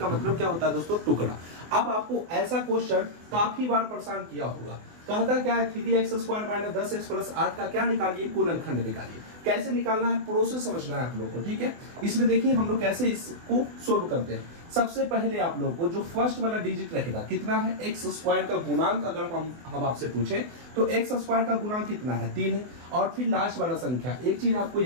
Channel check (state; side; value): late; left; 24 ms